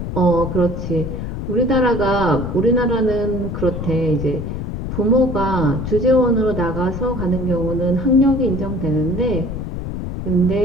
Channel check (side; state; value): left; noise; rumble, 5 dB below the sound